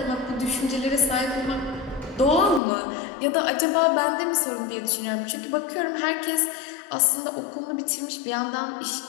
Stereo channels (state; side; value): drops out; right; at 2.6 s